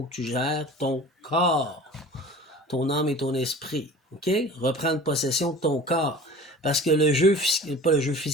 que tu gères ton corps, ton âme et ton esprit. OK? Reprendre possession de ton corps. Parce que le jeu, pas le jeu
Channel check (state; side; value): normal; both; correlation 0.41